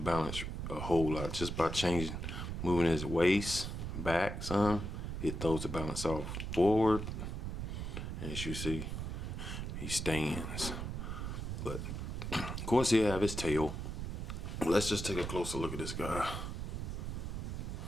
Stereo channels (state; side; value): noise; right; rumble, 4 dB below the sound